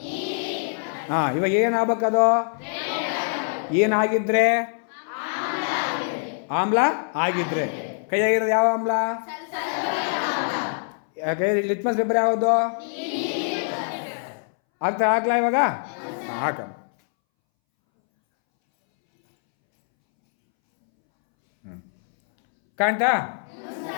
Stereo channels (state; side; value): silent; right; 63 dB below the other